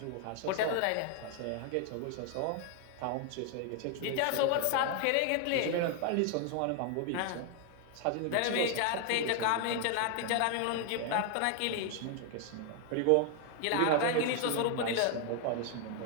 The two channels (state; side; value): different; both; correlation 0.01